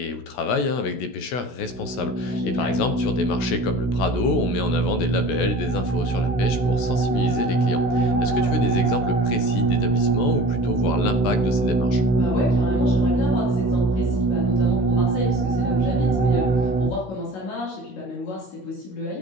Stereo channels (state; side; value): late; right; 16 ms